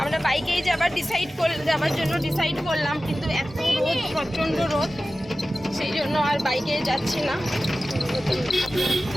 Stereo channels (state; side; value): normal; both; correlation 0.95